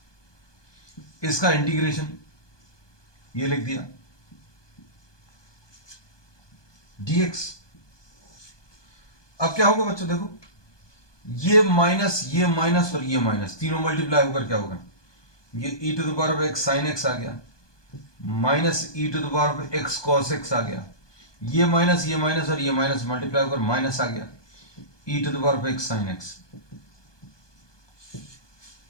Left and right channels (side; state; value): right; late; 1.2 ms